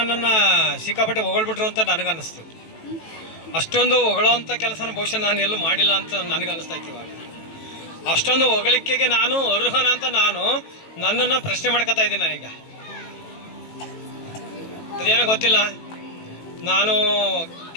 ಸಿಕ್ಕಾಪಟ್ಟೆ ಹೊಗಳ್ಬಿಟ್ರು ಅಂತ ನನಗನ್ನಿಸ್ತು. ಅಷ್ಟೊಂದು ಹೊಗಳೋವಂಥ ಕೆಲಸನ ಬಹುಶಃ ನಾನು ಎಲ್ಲೂ ಮಾಡಿಲ್ಲ ಅಂತ ನನಗನ್ನಿಸ್ತಾ ಇತ್ತು. ಇವಾಗ ಅಷ್ಟೊಂದು ಹೊಗಳಿಕೆಗೆ ನಾನು ಅರ್ಹನ ಅಂತ ನಾನು ನನ್ನನ್ನು ಪ್ರಶ್ನೆ ಮಾಡ್ಕೊತಾ ಇದ್ದೀನಿ. ನಾನೀಗ ಅದೇನೋ ಗೊತ್ತಿಲ್ಲ, ನಾನು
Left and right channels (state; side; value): late; right; 18 ms